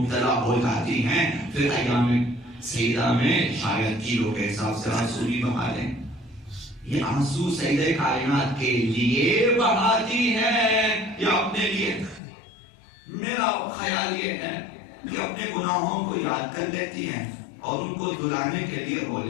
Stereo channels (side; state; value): right; drops out; at 12.2 s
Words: ہو جاتی ہیں، پھر ایام سیدہ میں شاید کلو کے حساب سے آنسو بھی بہا دیں. یہ آنسو سیدہ کائنات کے لیے بہاتی ہیں یا اپنے لیے؟ میرا خیال یہ ہے کہ اپنے گناہوں کو یاد کر لیتی ہیں اور ان کو دلانے کے لیے رو